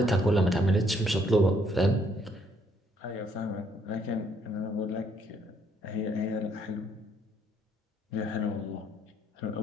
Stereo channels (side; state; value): both; normal; correlation 0.68